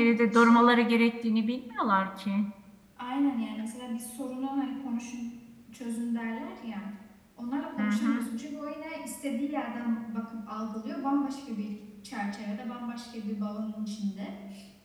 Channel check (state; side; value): identical; both; correlation 1.00